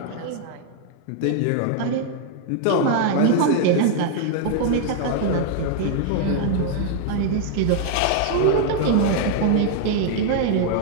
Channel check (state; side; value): different; both; correlation 0.00